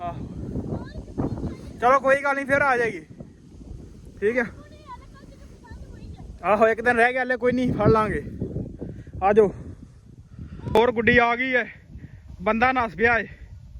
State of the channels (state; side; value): identical; both; correlation 1.00